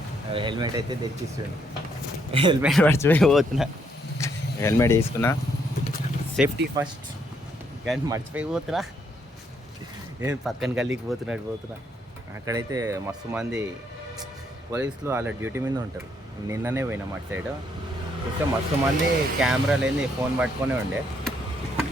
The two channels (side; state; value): both; normal; correlation 0.72